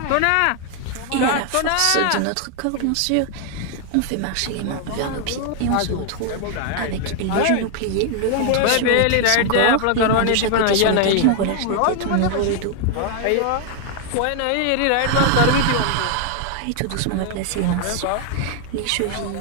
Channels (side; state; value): both; different; correlation 0.00